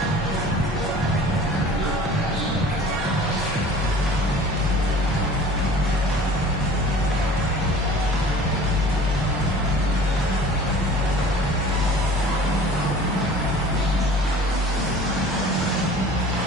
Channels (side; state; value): both; normal; correlation 0.45